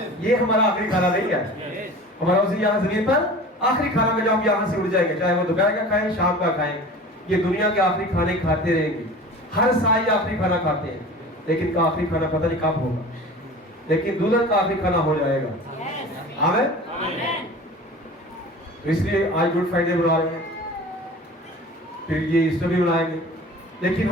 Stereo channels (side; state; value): both; normal; correlation 0.39